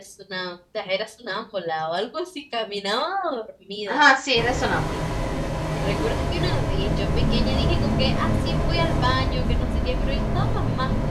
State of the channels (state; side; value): identical; both; correlation 1.00